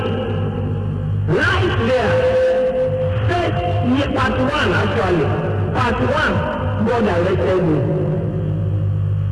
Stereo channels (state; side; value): identical; both; correlation 1.00